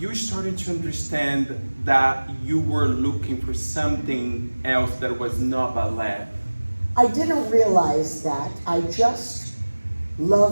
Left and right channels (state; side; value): inverted; both; correlation -1.00